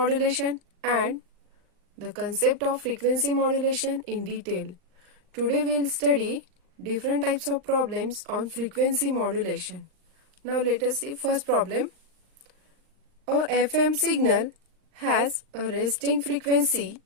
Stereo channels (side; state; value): left; late; 39 ms